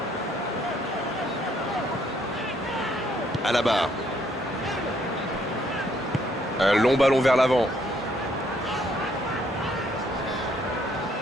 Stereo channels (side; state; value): both; normal; correlation 0.68